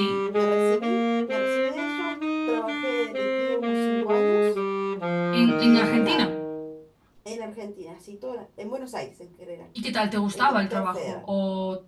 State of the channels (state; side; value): identical; both; correlation 1.00